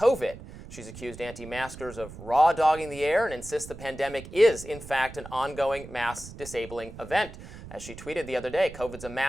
She's accused anti-maskers of raw dogging the air and insists the pandemic is, in fact, an ongoing mass disabling event. As she tweeted the other day, COVID's a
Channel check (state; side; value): noise; right; rumble, 14 dB below the sound